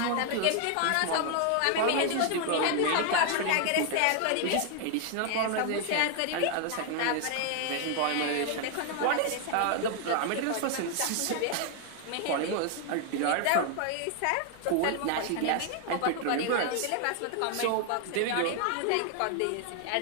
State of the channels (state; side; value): different; both; correlation 0.00